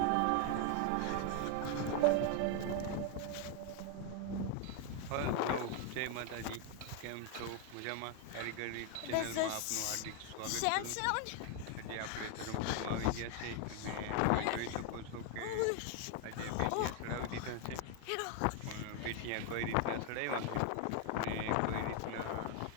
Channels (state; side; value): different; both; correlation 0.01